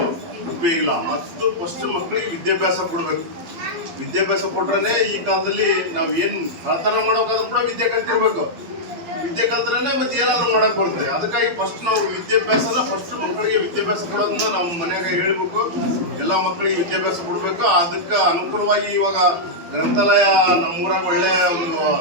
ಉಪಯೋಗ ಇಲ್ಲ, ಮತ್ತು ಫಸ್ಟ್ ಮಕ್ಕಳಿಗೆ ವಿದ್ಯಾಭ್ಯಾಸ ಕೊಡಬೇಕು. ವಿದ್ಯಾಭ್ಯಾಸ ಕೊಟ್ರೆ ಈ ಕಾಲದಲ್ಲಿ ನಾವು ಏನು ಕಳ್ತನ ಮಾಡೋಕ್ಕಾದ್ರೂ ಕೂಡ ವಿದ್ಯೆ ಕಲ್ತಿರ್ಬೇಕು. ವಿದ್ಯೆ ಕಲ್ತ್ರೇ ಮತ್ತೆ ಏನಾದರೂ ಮಾಡಕ್ಕೆ ಬರುತ್ತೆ. ಅದಕ್ಕಾಗಿ ಫಸ್ಟ್ ನಾವು ವಿದ್ಯಾಭ್ಯಾಸನ ಫಸ್ಟ್ ಮಕ್ಕಳಿಗೆ ವಿದ್ಯಾಭ್ಯಾಸ ಕೊಡೋದನ್ನ ನಾವು ಮನೆಯಾಗ ಹೇಳ್ಬೇಕು. ಎಲ್ಲ ಮಕ್ಕಳಿಗೆ ವಿದ್ಯಾಭ್ಯಾಸ ಕೊಡಬೇಕು. ಅದಕ್ಕೆ ಅನುಕೂಲವಾಗಿ ಇವಾಗ ಗ್ರಂಥಾಲಯ ನಮ್ಮೂರಾಗ ಒಳ್ಳೆಯ ಒಂದು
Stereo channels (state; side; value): late; left; 12 ms